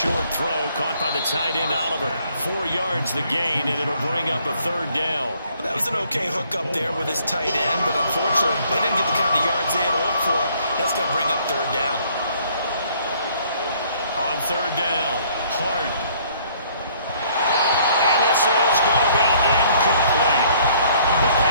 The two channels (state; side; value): inverted; both; correlation -0.62